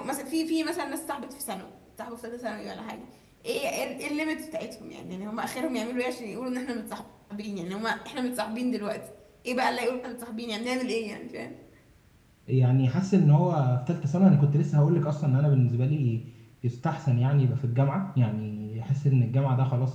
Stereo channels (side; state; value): both; identical; correlation 1.00